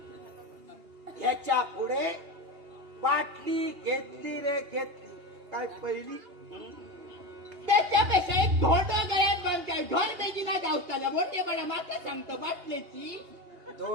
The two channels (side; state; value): left; late; 2.8 ms